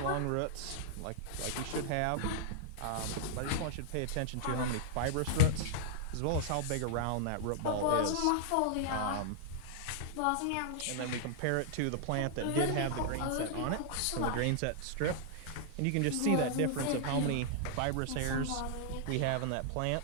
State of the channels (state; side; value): different; both; correlation -0.01